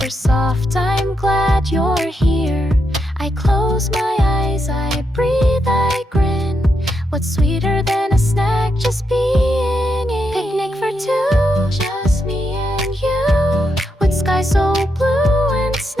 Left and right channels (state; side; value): normal; both; correlation 0.83